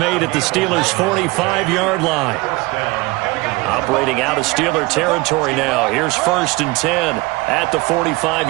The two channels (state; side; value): quieter; left; 23.0 dB